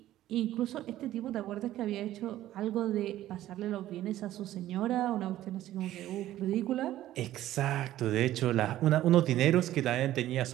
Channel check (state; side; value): quieter; left; 13.8 dB